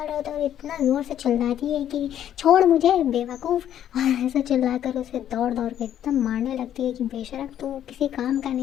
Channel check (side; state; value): right; quieter; 10.6 dB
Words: रहा होता है और इतना जोर से चिल्लाती है कि छोड़ मुझे बेवकूफ़, और ऐसा चिल्लाकर उसे दौड़ दौड़ के एकदम मारने लगती है कि बेशरम तू किसी काम का